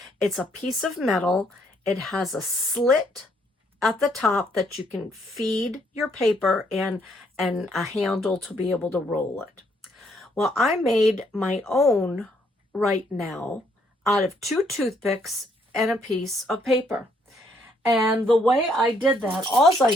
a piece of metal. It has a slit at the top that you can feed your paper and a handle to be able to roll it. Well, I made my own right now out of 2 toothpicks and a piece of paper. And the way I did that, all I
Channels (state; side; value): normal; both; correlation 0.70